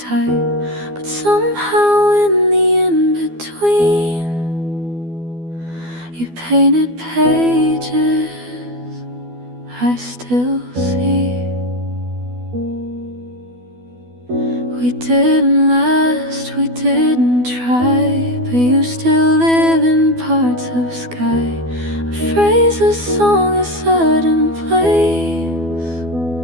but somehow in the in-between, you painted pages I still see. We didn't last, we didn't try, but you still live in parts of sky. A phrase, a song, a sudden place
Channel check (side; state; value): left; late; 12 ms